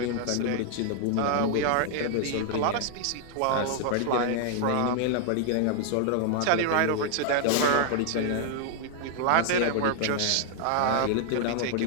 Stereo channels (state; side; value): different; both; correlation 0.00